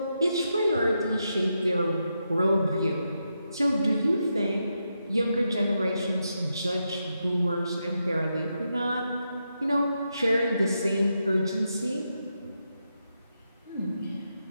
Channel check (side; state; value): both; inverted; correlation -0.84